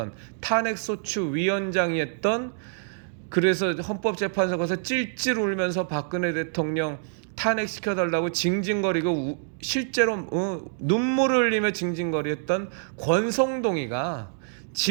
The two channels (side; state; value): left; silent; digital silence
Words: 탄핵소추 위원장이었던, 그래서 헌법재판소 가서 찔찔 울면서 박근혜 대통령 탄핵시켜달라고 징징거리고 실제로 눈물을 흘리며 징징거렸던 권성동이가